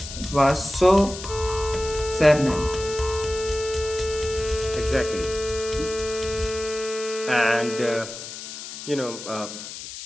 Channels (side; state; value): left; noise; hiss, 10 dB below the sound